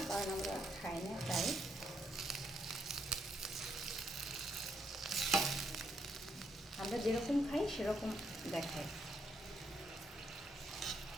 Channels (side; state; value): both; normal; correlation 0.76